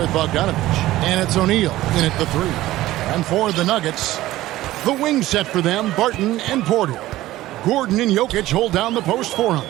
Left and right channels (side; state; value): left; quieter; 16.0 dB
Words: Bogdanovich. And it's O'Neal in at the three. And for the Nuggets, the wing set for them, Barton and Porter. Gordon and Jokic hold down the post for him.